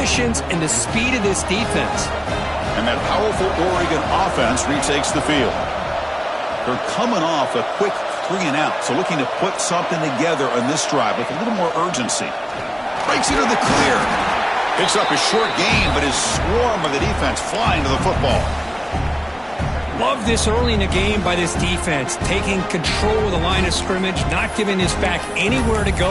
and the speed of this defense. And that powerful Oregon offense retakes the field. They're coming off a quick 3-and-out, so looking to put something together on this drive with a little more urgency. Breaks into the clear. Picks up a short gain, but his swarm of the defense flying to the football. Love this early in the game by this defense, taking control of the line of scrimmage, not giving his back anywhere to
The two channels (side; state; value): both; identical; correlation 1.00